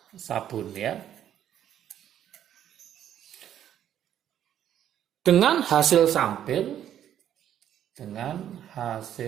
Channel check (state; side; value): quieter; left; 10.6 dB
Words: sabun ya. Dengan hasil samping,